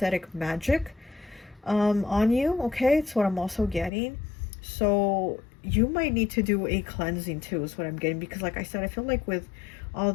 magic on you, okay? It's what I'm also getting. So you might need to do a cleansing too, is what I'm getting, because like I said, I feel like with all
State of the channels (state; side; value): drops out; right; at 3.9 s